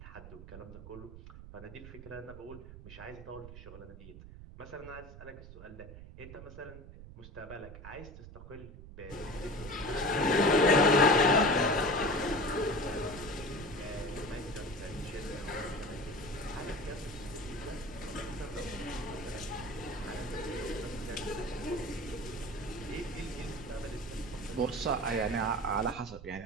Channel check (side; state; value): right; noise; rumble, 14 dB below the sound